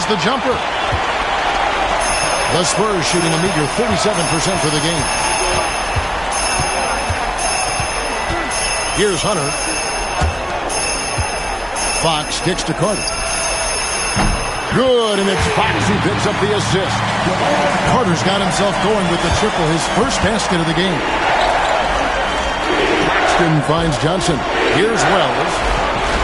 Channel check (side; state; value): both; identical; correlation 1.00